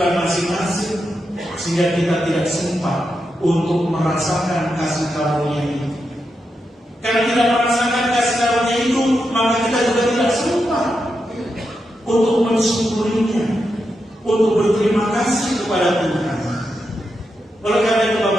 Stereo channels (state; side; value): normal; both; correlation 0.86